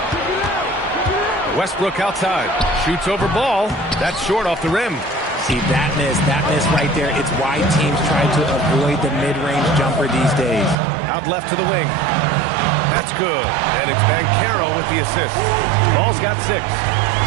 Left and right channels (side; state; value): left; drops out; at 10.8 s